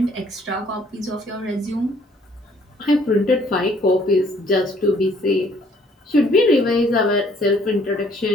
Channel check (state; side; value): normal; both; correlation 0.62